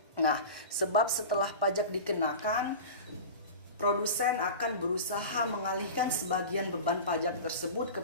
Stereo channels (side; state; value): both; inverted; correlation -0.31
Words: Nah, sebab setelah pajak dikenakan, produsen akan berusaha mengalihkan sebagian beban pajak tersebut